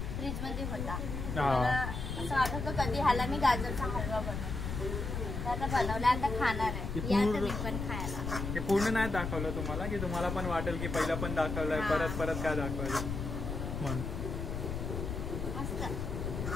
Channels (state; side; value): noise; left; rumble, 4 dB below the sound